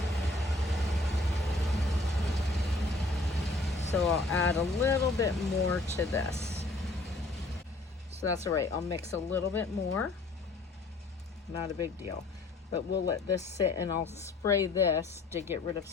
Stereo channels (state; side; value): quieter; right; 3.0 dB